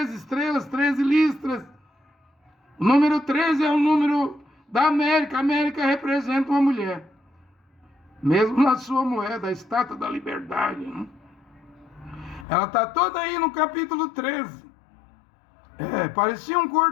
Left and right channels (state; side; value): drops out; right; at 12.5 s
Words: estrelas, 13 listras. O número 13 é o número da América. A América representa uma mulher. Mesmo na sua moeda, a estátua da liberdade. Né? Ela está toda aí no capítulo 13. Parecia um